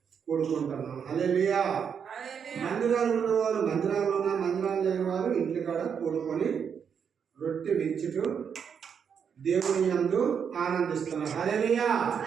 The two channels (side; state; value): left; quieter; 7.2 dB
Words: కూడుకుంటున్నాం. హల్లెలూయా. మందిరాలు ఉన్నవారు మందిరాల్లో మందిరాలు లేని వారు ఇంటి కాడ కూడుకొని రొట్టె విరుచుటూ దేవుని యందు ఆనందిస్తున్నారు. హల్లెలూయా.